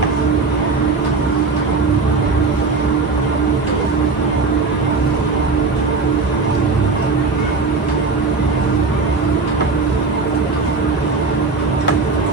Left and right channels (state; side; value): quieter; left; 4.1 dB